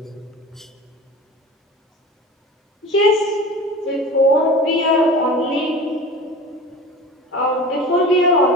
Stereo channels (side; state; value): both; normal; correlation 0.36